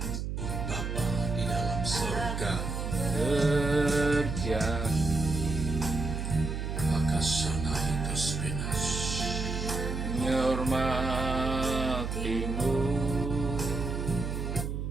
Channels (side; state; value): right; noise; hum, 3 dB below the sound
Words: Bapa di dalam surga, Berjanji Akasana Hitus Pinas, menghormatimu,